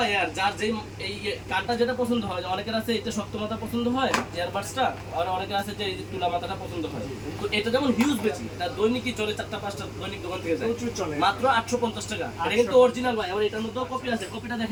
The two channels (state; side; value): identical; both; correlation 1.00